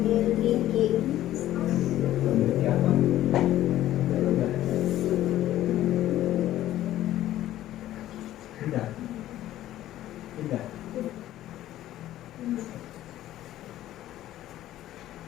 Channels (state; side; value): quieter; right; 13.6 dB